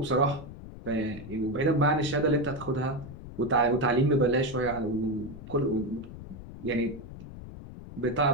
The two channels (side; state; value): left; noise; rumble, 13 dB below the sound